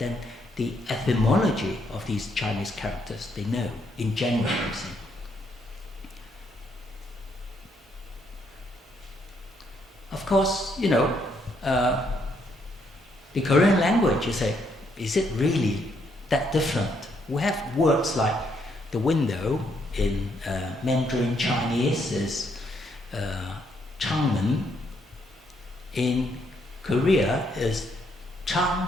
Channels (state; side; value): normal; both; correlation 0.74